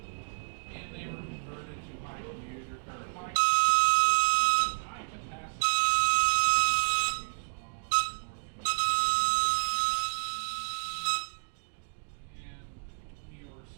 and they were converted to high capacity and New York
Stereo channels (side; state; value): left; silent; digital silence